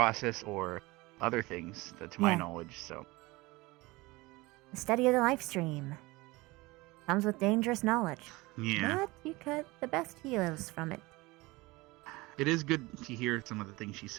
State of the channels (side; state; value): left; quieter; 22.0 dB